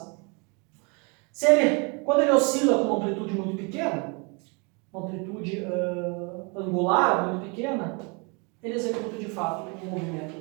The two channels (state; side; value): quieter; left; 32.1 dB